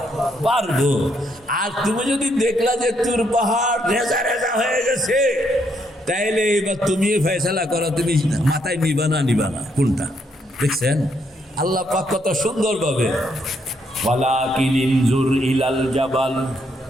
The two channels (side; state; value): both; normal; correlation 0.74